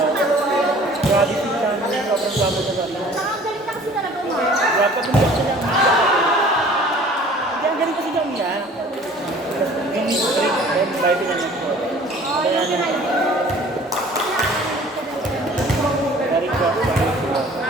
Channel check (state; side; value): normal; both; correlation 0.50